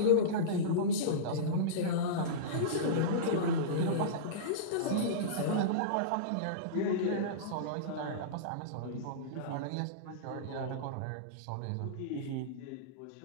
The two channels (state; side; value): different; both; correlation -0.05